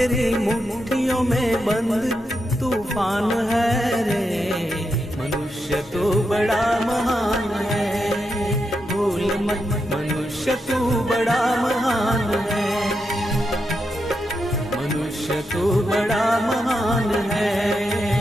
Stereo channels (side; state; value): both; normal; correlation 0.85